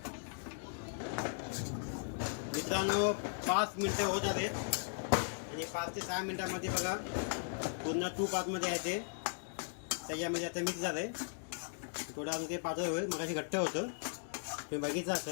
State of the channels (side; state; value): right; silent; digital silence